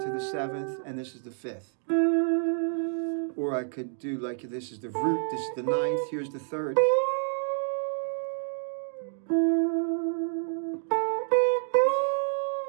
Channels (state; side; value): silent; left; digital silence